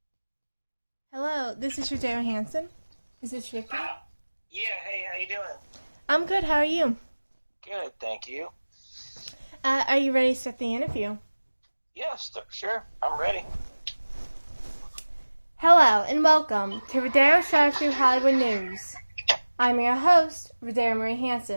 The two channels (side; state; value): both; inverted; correlation -1.00